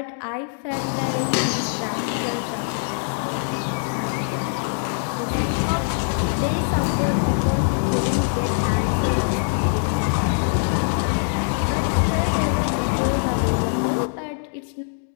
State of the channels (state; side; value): silent; right; digital silence